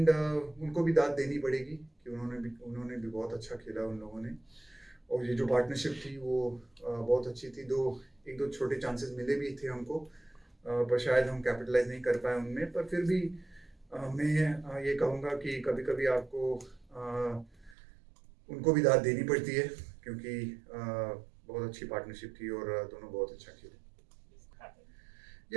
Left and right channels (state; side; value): drops out; left; at 17.8 s